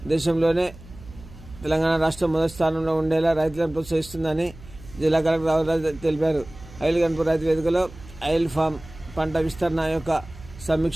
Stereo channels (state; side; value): noise; right; hum, 19 dB below the sound